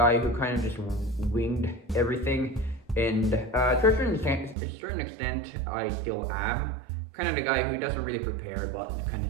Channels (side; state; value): left; drops out; at 4.5 s